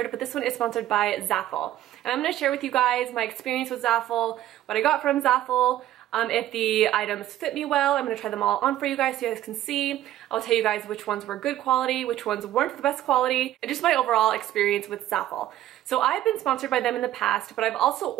but this one is sponsored by Zaful. And I'm going to share with you guys my experience with Zaful, what I got from Zaful, if the items fit me well. I'm going to try them all on for you guys so you guys can see. I'll tell you guys which ones were good quality, which ones weren't the best quality, and just my overall experience with Zaful. So I've been sponsored by them in the past, but I've also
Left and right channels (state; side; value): quieter; left; 13.2 dB